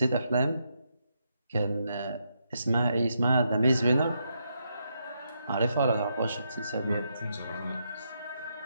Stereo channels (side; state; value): both; inverted; correlation -0.80